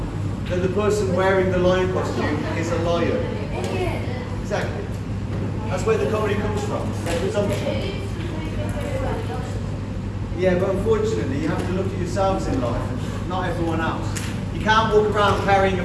that the person wearing the lion costume is a lion. Exactly. That's where the comedy comes from. That presumption. Yeah, but unfortunately, you have to look at yourselves in life, not everyone else. You can't walk around carrying a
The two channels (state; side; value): identical; both; correlation 1.00